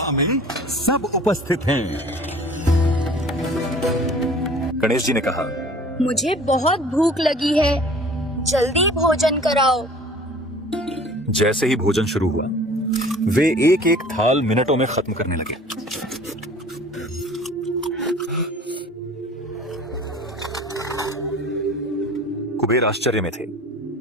में सब उपस्थित हैं। गणेश जी ने कहा, मुझे बहुत भूख लगी है, जल्दी भोजन कराओ। जैसे ही भोजन शुरू हुआ, वे एक एक थाल मिनटों में खत्म करने लगे। कुबेर आश्चर्य में थे,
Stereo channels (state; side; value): normal; both; correlation 0.47